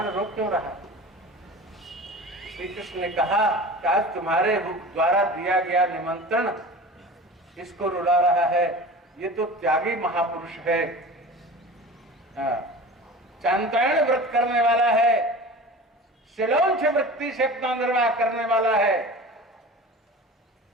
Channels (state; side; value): normal; both; correlation 0.36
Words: रो क्यों रहा? श्री कृष्ण ने कहा कि आज तुम्हारे द्वारा दिया गया निमंत्रण इसको रुला रहा है। ये तो त्यागी महापुरुष है, चांद्रायण व्रत करने वाला है, शिलोंच वृत्ति से अपना निर्वाह करने वाला है।